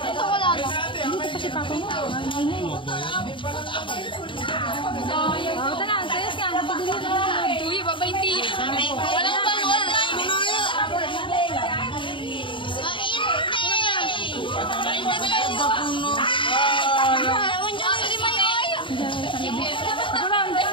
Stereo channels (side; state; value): right; late; 0.24 ms